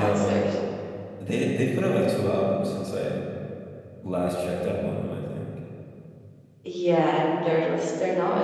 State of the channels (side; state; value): both; identical; correlation 1.00